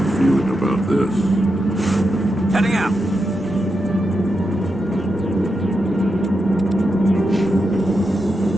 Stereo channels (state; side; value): normal; both; correlation 0.86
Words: feeling about this. Heading out.